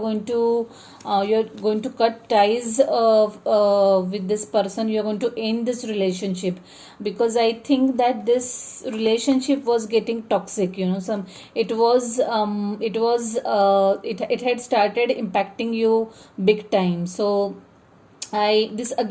to cut ties with this person. You're going to end this relationship, because I think that this relationship was getting toxic. It had started impacting you big time. So this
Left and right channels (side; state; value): both; identical; correlation 1.00